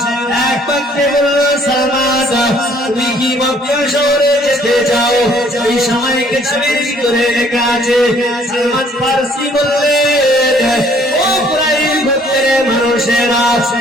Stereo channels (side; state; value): both; normal; correlation 0.61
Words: এক বাক্যে বলল সালমান তুমি কি মক্কা শহরে যেতে চাও? এই সময় কিতাবের ভিতরে লেখা আছে সালমান ফারসি বললেন ও কুরাইশ গোত্রের মানুষেরা